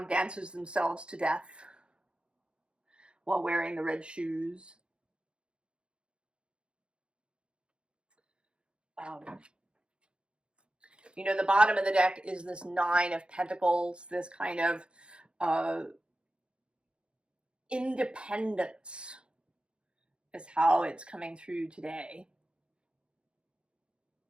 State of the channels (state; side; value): late; left; 0.055 ms